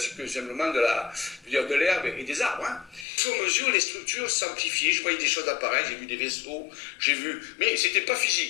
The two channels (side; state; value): right; drops out; at 3.1 s